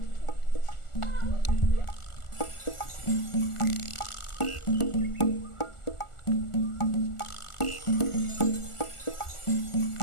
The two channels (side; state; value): right; late; 1.4 ms